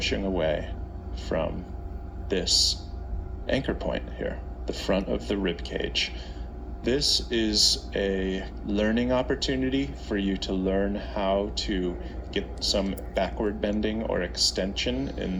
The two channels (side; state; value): both; identical; correlation 1.00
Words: away from this anchor point here, the front of the rib cage. This is a learning opportunity for you to learn how to get some backward bending or extension